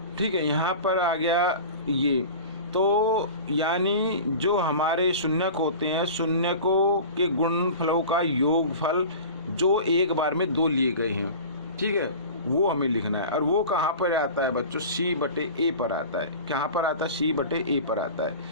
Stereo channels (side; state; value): both; inverted; correlation -0.37